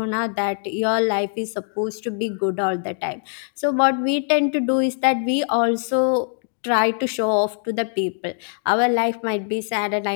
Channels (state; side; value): silent; right; 61 dB below the other